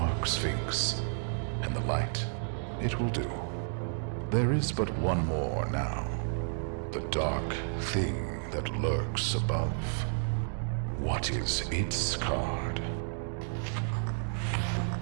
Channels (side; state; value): left; silent; digital silence